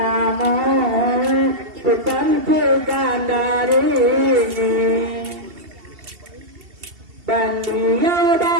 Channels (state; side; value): late; left; 2.7 ms